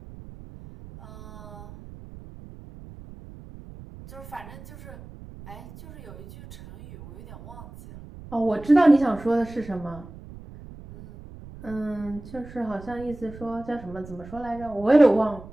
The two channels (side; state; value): right; noise; rumble, 16 dB below the sound